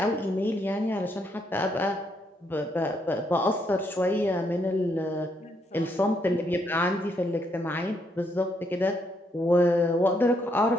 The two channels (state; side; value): normal; both; correlation 0.74